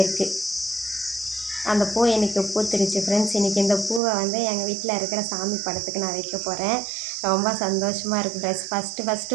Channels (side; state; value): left; drops out; at 4.0 s